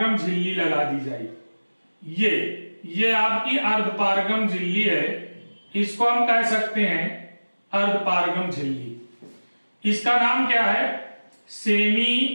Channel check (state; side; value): inverted; both; correlation -1.00